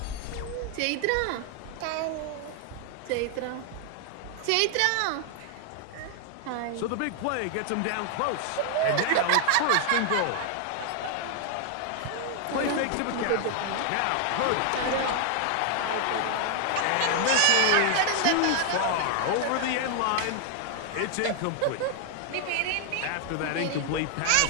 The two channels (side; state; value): both; different; correlation 0.00